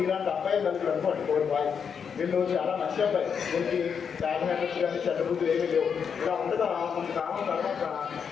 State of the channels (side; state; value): right; quieter; 6.8 dB